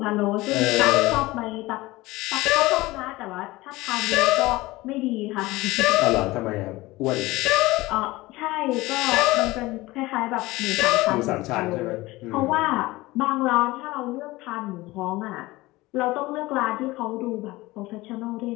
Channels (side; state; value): right; quieter; 19.9 dB